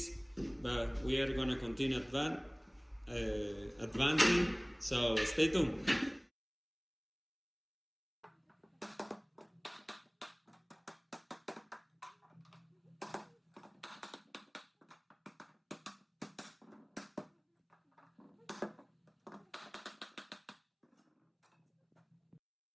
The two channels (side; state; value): both; identical; correlation 1.00